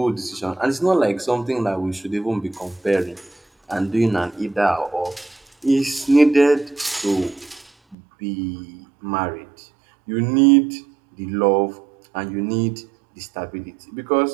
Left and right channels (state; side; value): drops out; left; at 8.0 s